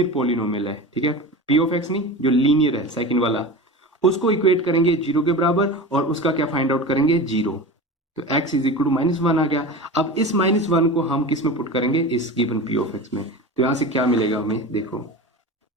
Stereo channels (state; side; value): normal; both; correlation 0.30